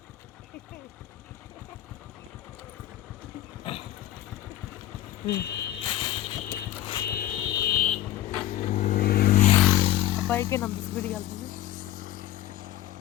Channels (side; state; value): right; quieter; 14.0 dB